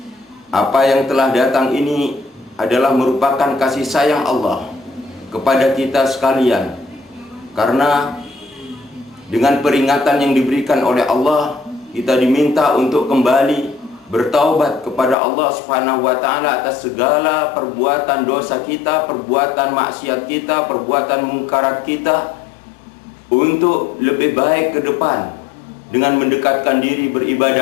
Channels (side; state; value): right; drops out; at 15.2 s